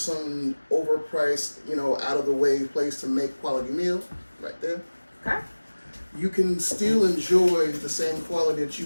overpriced, out of the way place to make quality meal right there. Okay. You can still enjoy the same quality that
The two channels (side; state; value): both; inverted; correlation -1.00